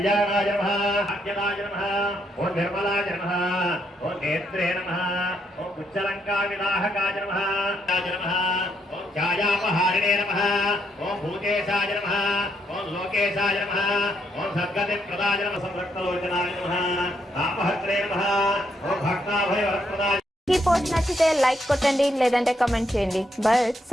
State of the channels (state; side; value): normal; both; correlation 0.76